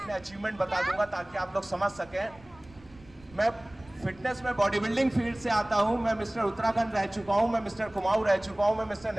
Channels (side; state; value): right; noise; rumble, 24 dB below the sound